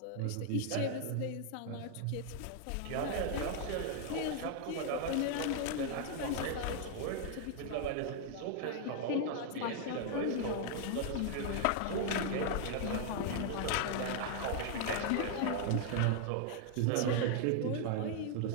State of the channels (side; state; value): both; different; correlation 0.00